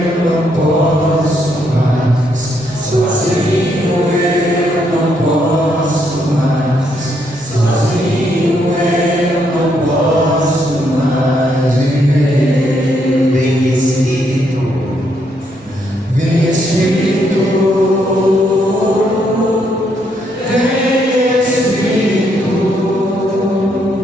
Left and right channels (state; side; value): normal; both; correlation 0.74